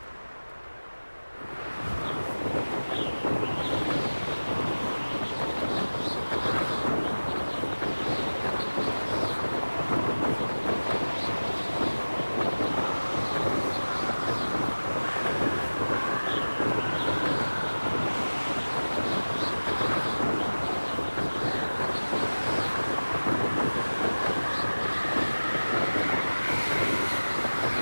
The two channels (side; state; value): both; inverted; correlation -1.00